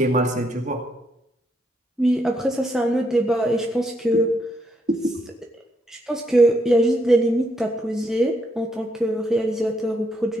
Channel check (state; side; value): normal; both; correlation 0.76